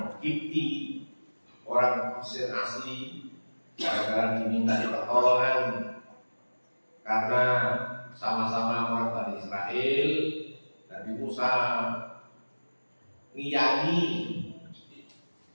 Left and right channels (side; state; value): both; inverted; correlation -1.00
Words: Kipti, orang Mesir asli, gara-gara diminta pertolongan karena sama-sama orang Bani Israel. Nabi Musa ngiyani,